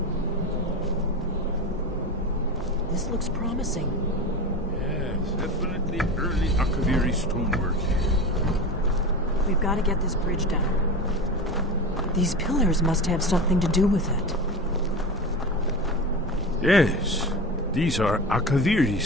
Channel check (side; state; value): both; normal; correlation 0.26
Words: This looks promising. Yes, definitely early Akaviri stonework here. We've got to get this bridge down. These pillars must have something to do with it. Yes, these are Akaviri